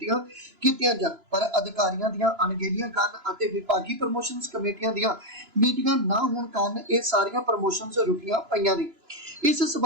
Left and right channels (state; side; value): late; left; 2.9 ms